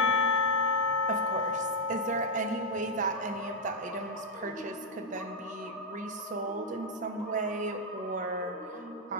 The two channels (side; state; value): both; normal; correlation -0.02